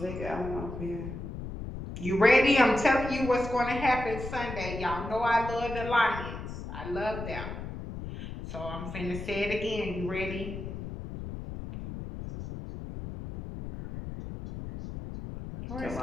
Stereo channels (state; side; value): noise; left; rumble, 8 dB below the sound